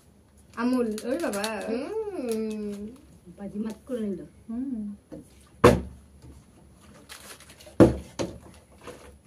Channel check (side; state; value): both; identical; correlation 1.00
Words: अमूल ओए बाबा बाजी मत कर लो